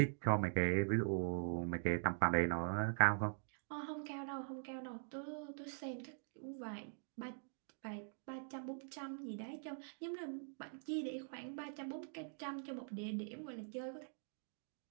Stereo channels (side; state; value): left; silent; digital silence